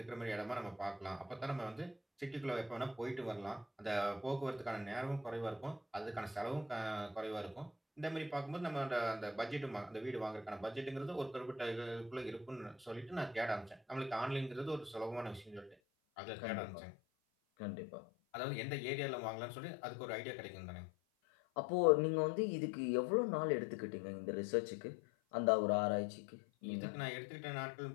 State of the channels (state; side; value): drops out; right; at 15.8 s